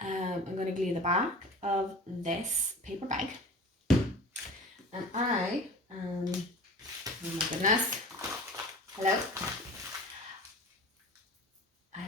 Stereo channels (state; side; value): normal; both; correlation 0.38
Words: I'm going to glue the back of this paper bag. And oh my goodness, hello. I